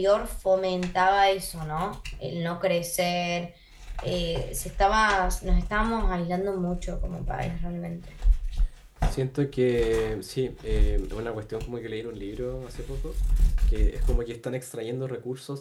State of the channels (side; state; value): both; identical; correlation 1.00